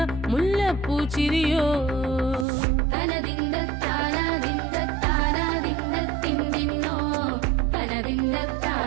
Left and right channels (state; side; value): drops out; left; at 2.5 s